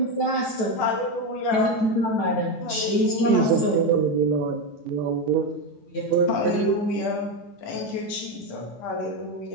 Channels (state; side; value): late; right; 9.1 ms